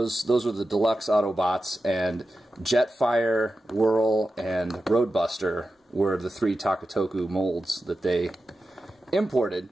were the deluxe Autobots, and Jetfire, Whirl, and Roadbuster were the 3 Takatoku molds that they imported,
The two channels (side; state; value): both; normal; correlation 0.92